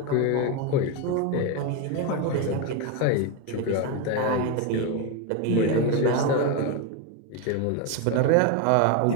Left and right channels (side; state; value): both; different; correlation 0.03